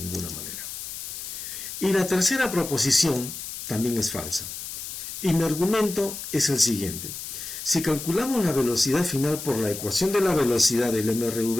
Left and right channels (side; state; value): left; noise; hiss, 8 dB below the sound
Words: manera. Y la tercera proposición también es falsa. Y mi argumento es el siguiente. Si calculamos la velocidad final por la ecuación de la velocidad del